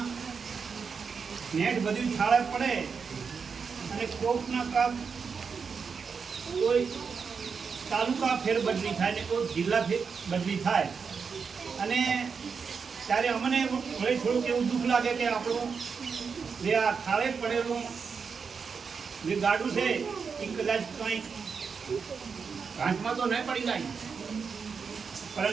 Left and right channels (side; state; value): left; quieter; 5.7 dB